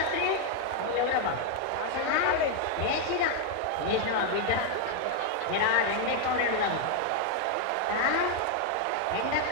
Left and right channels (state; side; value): different; both; correlation 0.00